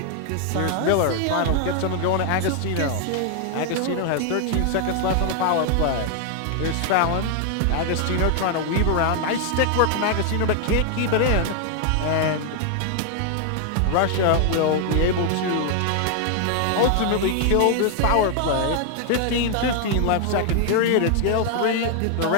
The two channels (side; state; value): both; different; correlation 0.00